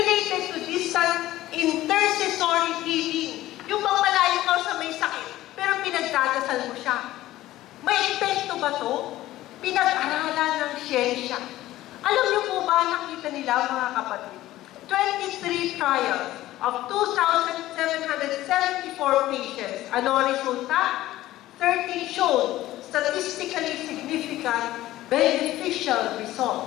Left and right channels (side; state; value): right; quieter; 15.5 dB